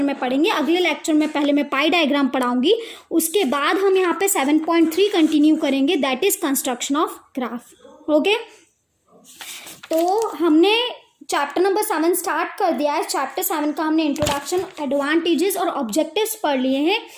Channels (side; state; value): both; identical; correlation 1.00